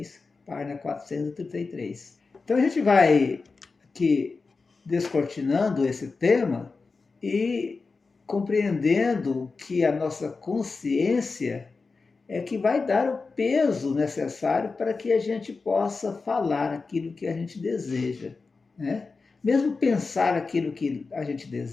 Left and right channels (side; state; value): right; quieter; 4.2 dB